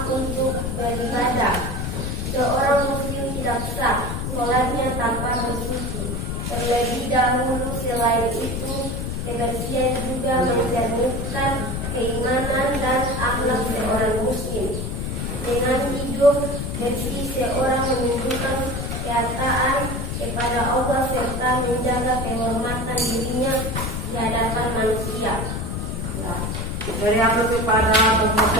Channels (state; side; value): noise; left; rumble, 3 dB below the sound